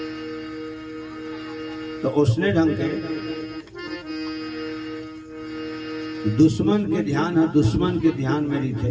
तो उसने ढंग के दुश्मन के ध्यान है, दुश्मन के ध्यान में नहीं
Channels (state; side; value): identical; both; correlation 1.00